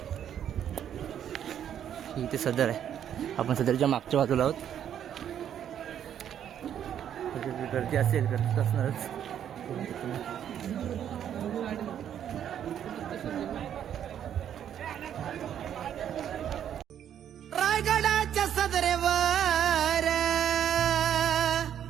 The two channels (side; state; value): left; quieter; 9.7 dB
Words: इथे सदर आहे. आपण सदरच्या मागच्या बाजूला आहोत. गर्दी असेल, गर्दी असणारच. रायगडाच्या सदरेवर